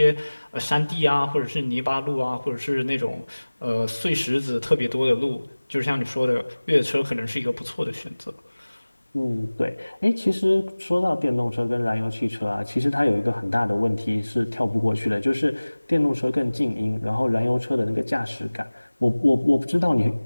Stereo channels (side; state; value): both; inverted; correlation -1.00